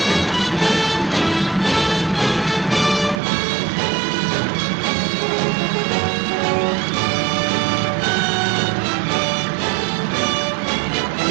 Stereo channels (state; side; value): drops out; left; at 3.2 s